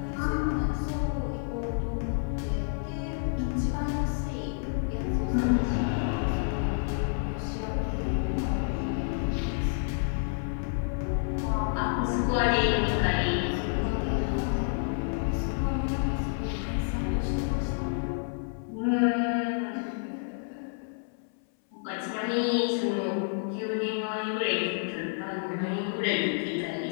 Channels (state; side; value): silent; right; 58 dB below the other